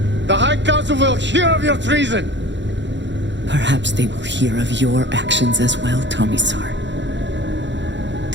The High Council will hear of your treason. Perhaps they will hear of your actions as well, Tomisar.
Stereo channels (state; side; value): late; left; 0.52 ms